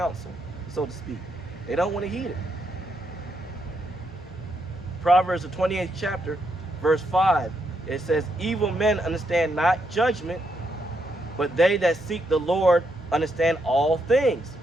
so to speak. They don't want to heed it. Proverbs, the 28th chapter, verse 5, it says, evil men understand not judgment, but they that seek the Lord understand all things.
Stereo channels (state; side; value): normal; both; correlation 0.78